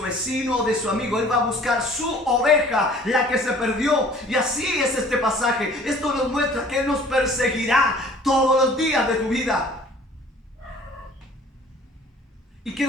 vecino o de su amigo. Él va a buscar su oveja, la que se perdió. Y así es este pasaje. Esto nos muestra que Él nos perseguirá todos los días de tu vida. Y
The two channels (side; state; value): both; normal; correlation 0.51